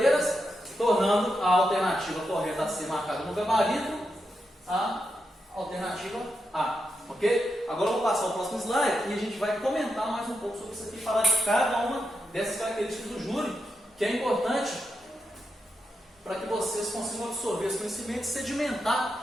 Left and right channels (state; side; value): normal; both; correlation 0.86